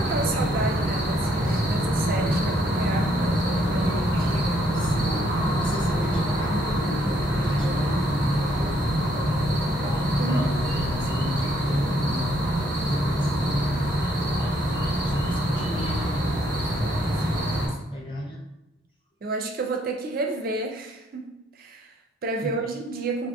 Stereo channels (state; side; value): normal; both; correlation 0.69